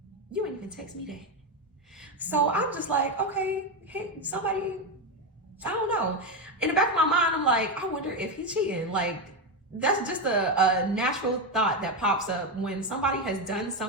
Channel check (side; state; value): both; normal; correlation 0.10